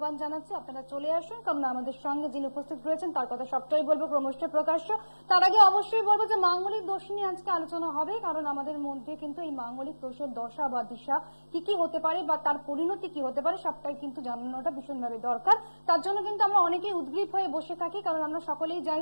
জানাচ্ছি আপনারা চলে আসুন, কারণ আমাদের সঙ্গে যিনি উপস্থিত রয়েছেন তার কথা সবটাই বলবো ক্রমশ প্রকাশ্য। তার আগে অবশ্যই বলবো যে মাঙ্গলিক দোষ নিয়ে আজকে আলোচনা হবে, কারণ আমাদের মধ্যে কিন্তু এই মাঙ্গলিক দোষের দশা বা দিশা কি কি হতে পারে বা তার পরিণতি কি হতে পারে সবটাই কিন্তু জানানোটা ভীষণভাবে দরকার। তার জন্য কিন্তু আমরা অনেকেই উদ্গ্রীব হয়ে বসে থাকি, কারণ আমরা সকলেই জানি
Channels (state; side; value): inverted; both; correlation -1.00